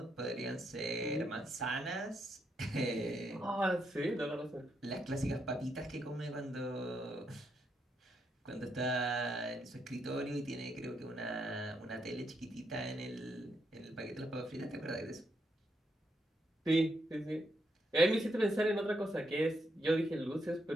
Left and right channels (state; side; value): normal; both; correlation 0.79